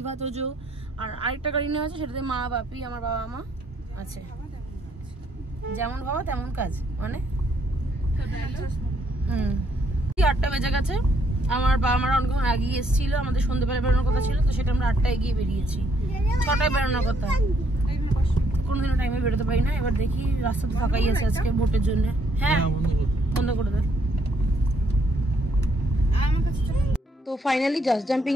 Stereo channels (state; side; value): normal; both; correlation 0.70